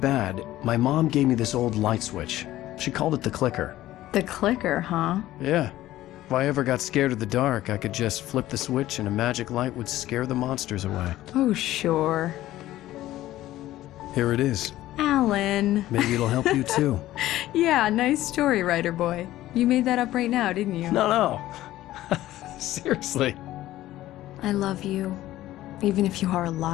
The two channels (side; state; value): right; quieter; 14.9 dB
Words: my mom gave me this old light switch. She called it the clicker. The clicker, huh? Yeah. If I ever got scared of the dark, I could just flip the switch and a magic light would scare the monsters away. Oh, sure. Here it is. Alan. Maybe it'll help you, too. Yeah, nice story, writer boy. You made that up right now, didn't you? No. Seriously. I love you, even if you are a